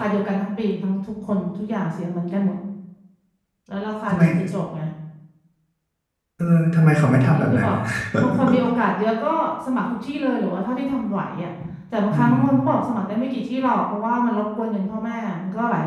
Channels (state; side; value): identical; both; correlation 1.00